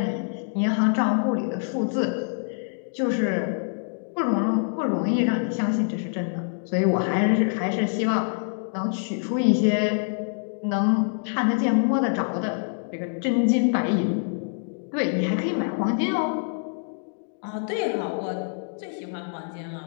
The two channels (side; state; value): right; silent; digital silence